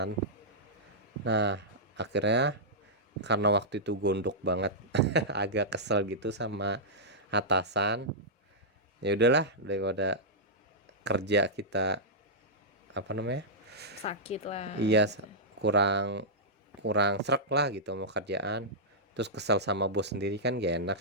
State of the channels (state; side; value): normal; both; correlation -0.11